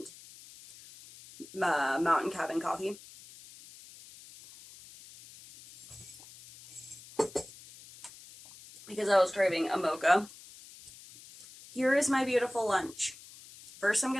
Mountain Cabin coffee. Because I was craving a mocha. Here is my beautiful lunch. First, I'm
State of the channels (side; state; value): left; noise; hiss, 19 dB below the sound